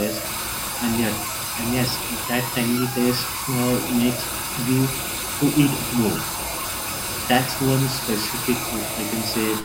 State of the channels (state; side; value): identical; both; correlation 1.00